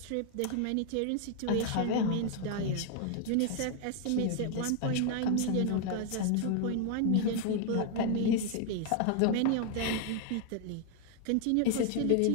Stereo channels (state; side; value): different; both; correlation 0.00